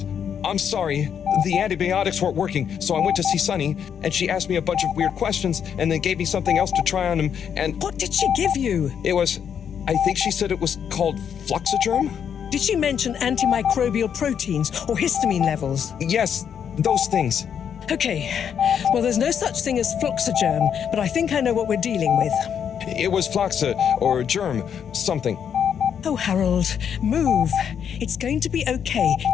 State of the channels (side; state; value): right; quieter; 8.1 dB